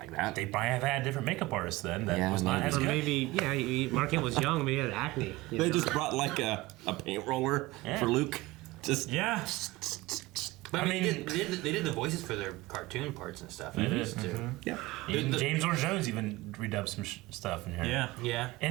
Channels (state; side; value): quieter; left; 19.9 dB